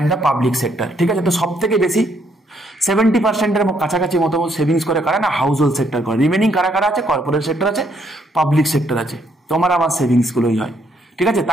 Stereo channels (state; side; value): normal; both; correlation 0.71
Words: the public sector, ঠিক আছে? তো সব থেকে বেশি 70%-এর কাছাকাছি মতো সেভিংস করে কারা না, হাউস হোল্ড সেক্টর করে। রিমেনিং কারা কারা আছে, কর্পোরেট সেক্টর আছে, পাবলিক সেক্টর আছে। তোমার আমার সেভিংস গুলোই হয়, ঠিক আছে?